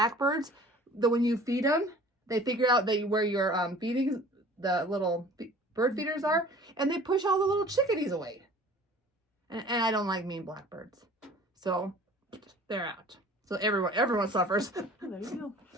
that when you feed them, they figure out where your feeding the little bird feeders are, and they push all the little chickadees away. And I don't like mean blackbirds, so they're out. So everyone suffers. Oh, there you go.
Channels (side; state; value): both; normal; correlation 0.47